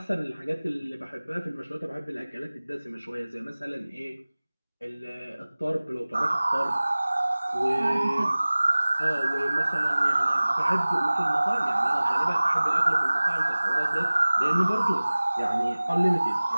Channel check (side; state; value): both; inverted; correlation -0.99